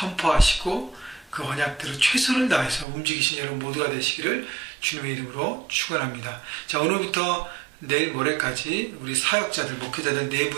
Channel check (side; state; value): left; drops out; at 2.9 s